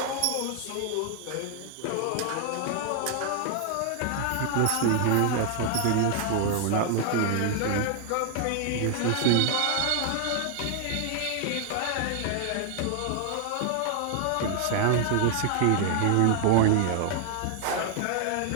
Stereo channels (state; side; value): different; both; correlation 0.00